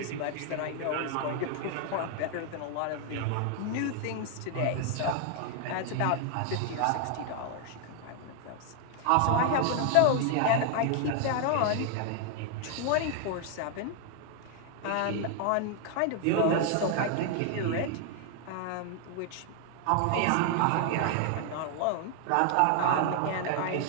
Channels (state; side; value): different; both; correlation 0.00